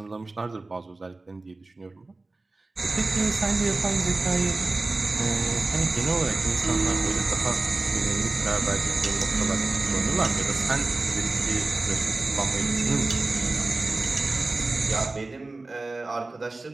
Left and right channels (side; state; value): left; quieter; 3.3 dB